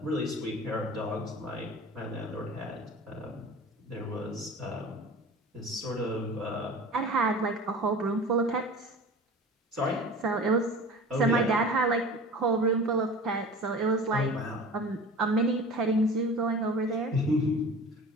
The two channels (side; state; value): both; normal; correlation 0.39